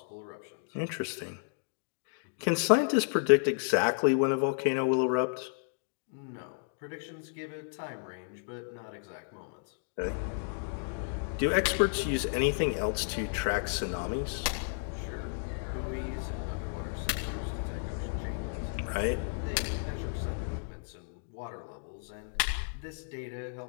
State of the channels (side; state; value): right; silent; digital silence